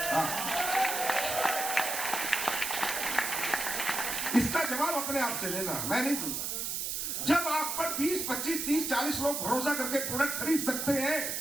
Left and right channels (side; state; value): right; noise; hiss, 2 dB below the sound